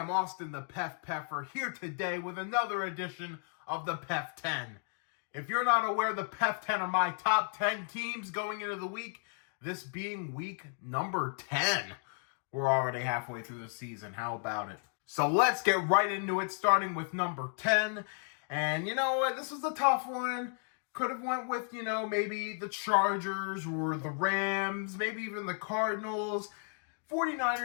Austin the PEF Peffer here today with another edition of the PEF 10. If you're not aware, the PEF 10 are my top 10 teams going into the week, this being week number 10. We're already halfway through the season. How about it? So let's get right into it, starting with number 10. And you know what? This was a tough one. Could have went with, maybe the Chargers or the Rams, maybe even the Cardinals.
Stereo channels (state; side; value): silent; right; 55 dB below the other